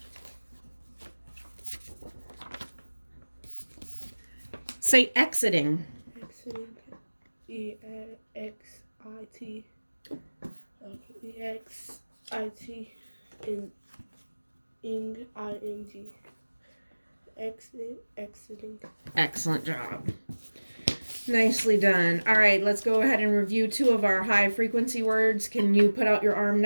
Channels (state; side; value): inverted; both; correlation -1.00